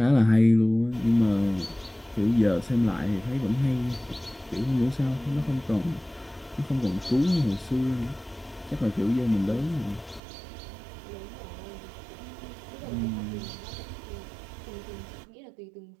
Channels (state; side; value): drops out; left; at 10.2 s